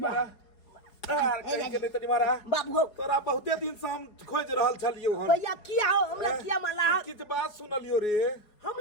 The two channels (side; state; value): right; late; 4.8 ms